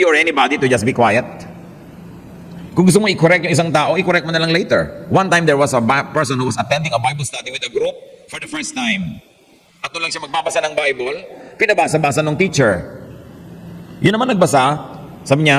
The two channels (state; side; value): identical; both; correlation 1.00